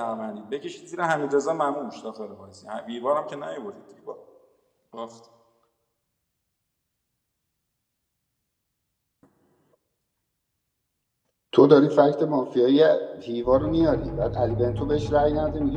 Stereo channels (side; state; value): both; identical; correlation 1.00